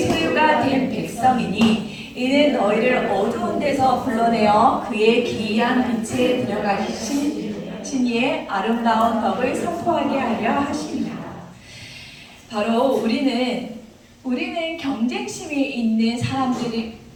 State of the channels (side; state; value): both; identical; correlation 1.00